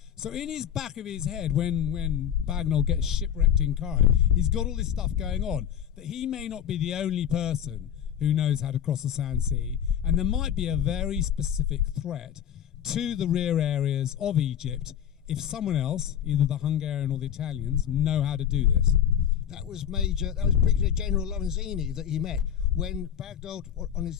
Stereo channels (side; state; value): right; quieter; 9.5 dB